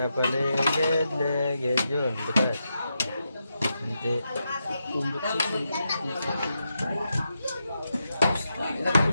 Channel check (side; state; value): both; inverted; correlation -0.86